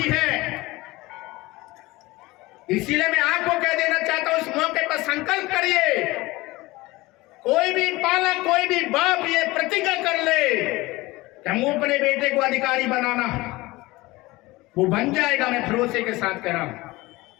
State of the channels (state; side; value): quieter; right; 20.6 dB